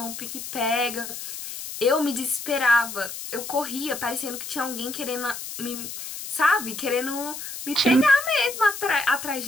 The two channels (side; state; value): left; noise; hiss, 9 dB below the sound